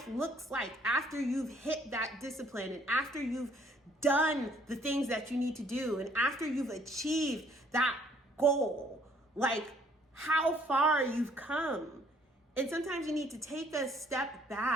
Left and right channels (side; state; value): both; normal; correlation 0.62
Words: looks like after you've hit that discipline and after you've done the things that you need to do and after you've achieved that goal, like how far you've come. And sometimes you need to take a step